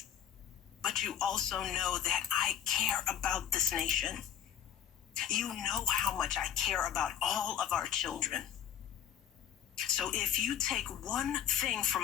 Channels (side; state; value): right; quieter; 9.3 dB